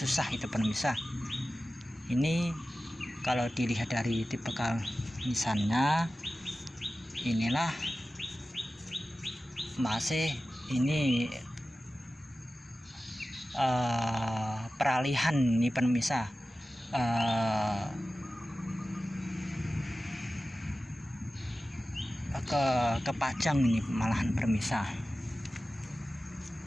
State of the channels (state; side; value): normal; both; correlation 0.95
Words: itu permisa. Ini kalau dilihat dari tipikal nisannya, inilah masih ini peralihan ini permisa, ke Pajang ini malahan permisa.